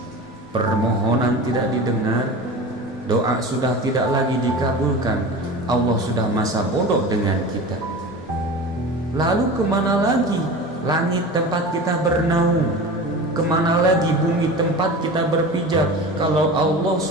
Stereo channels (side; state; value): both; normal; correlation 0.33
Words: Permohonan tidak didengar, doa sudah tidak lagi dikabulkan, Allah sudah masa bodoh dengan kita. Lalu kemana lagi langit tempat kita bernaung? Kemana lagi bumi tempat kita berpijak kalau Allah